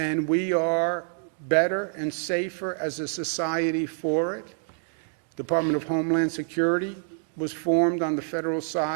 we are better and safer as a society for it. Department of Homeland Security was formed on the federal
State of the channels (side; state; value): left; silent; 60 dB below the other